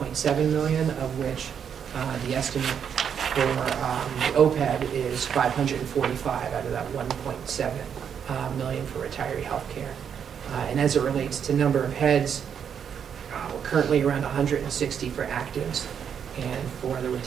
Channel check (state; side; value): quieter; left; 7.8 dB